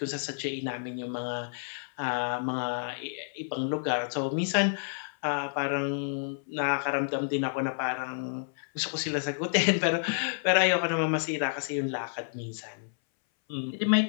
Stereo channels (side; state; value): right; silent; 58 dB below the other